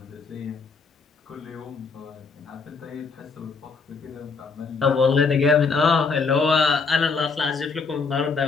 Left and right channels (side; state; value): right; quieter; 4.7 dB